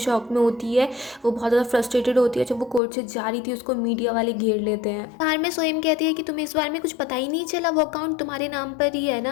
में होती है। वो बहुत ज़्यादा फ्रस्ट्रेटेड होती है। जब वो कोर्ट से जा रही थी उसको मीडिया वाले घेर लेते हैं। कार में सोएम कहती है कि तुम्हें इस बारे में कुछ पता ही नहीं चला, वो अकाउंट तुम्हारे नाम पर ही है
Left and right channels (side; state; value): right; drops out; at 2.8 s